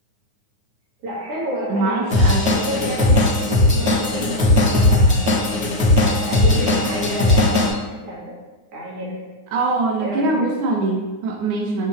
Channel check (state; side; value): late; left; 9.5 ms